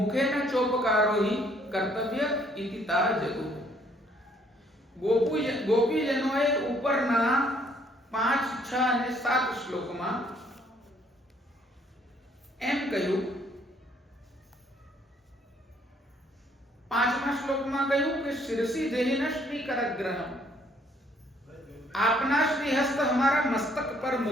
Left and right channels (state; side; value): normal; both; correlation 0.64